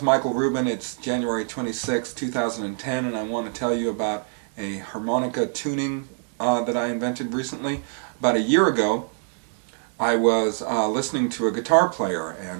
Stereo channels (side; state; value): left; silent; 62 dB below the other